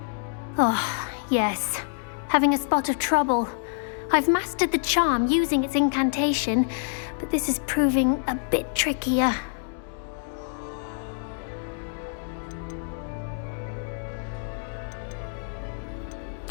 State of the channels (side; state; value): right; silent; 60 dB below the other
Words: Oh, yes. Having a spot of trouble. I've mastered the charm using its incantation, but this is proving a bit trickier.